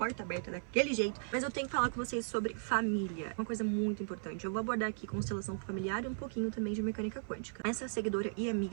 aberta daquele jeito. Mas eu tenho que falar com vocês sobre família, uma coisa muito importante. Eu vou abordar aqui constelação familiar e um pouquinho também de mecânica quântica. Essa seguidora e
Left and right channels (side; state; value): left; silent; 53 dB below the other